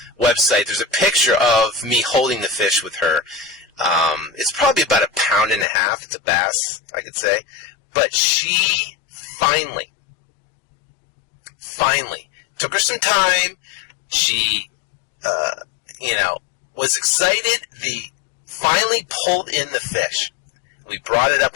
website. There's a picture of me holding the fish with her. It's probably about 1.5 pounds. It's a bass, I could say. But she finally, took her some time. She, was excited. Finally pulled in the fish. We brought it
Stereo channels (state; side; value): drops out; right; at 5.7 s